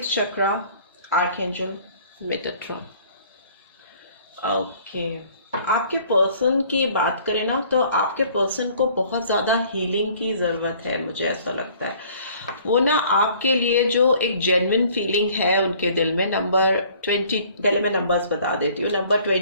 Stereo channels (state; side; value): inverted; both; correlation -0.55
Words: chakra archangel Metatron. Okay, आपके पर्सन की बात करें ना तो आपके पर्सन को बहुत ज़्यादा हीलिंग की ज़रूरत है. मुझे ऐसा लगता है वो ना आपके लिए जो एक जेन्युइन फीलिंग है उनके दिल में. नंबर 20, पहले मैं नंबर्स बता देती हूँ. नंबर